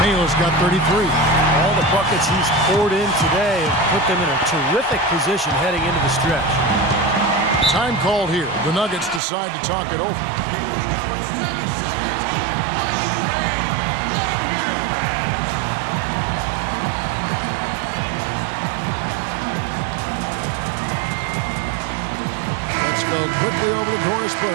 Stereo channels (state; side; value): drops out; left; at 9.2 s